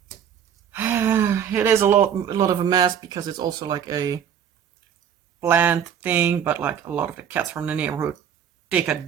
It is a lot of a mess because it's also like a plant thing, but like a lot of the cats from the neighborhood take a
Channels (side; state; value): left; quieter; 8.6 dB